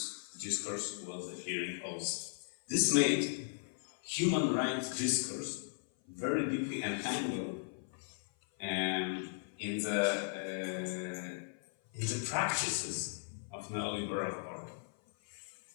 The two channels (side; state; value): right; silent; 53 dB below the other